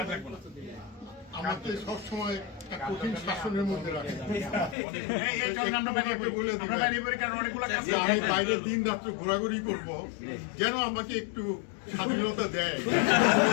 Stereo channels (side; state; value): right; drops out; at 4.8 s